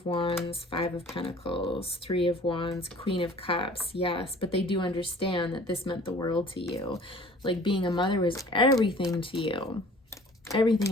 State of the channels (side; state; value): both; normal; correlation 0.49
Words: Wands, 5 of Pentacles, 3 of Wands, Queen of Cups. Yes, but they do understand that this meant the world to you. Like being a mother was everything to you.